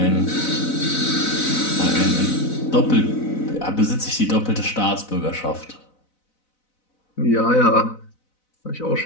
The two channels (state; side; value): late; right; 4.0 ms